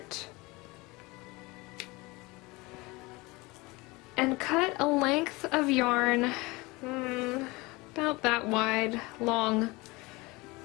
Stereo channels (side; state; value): right; quieter; 23.5 dB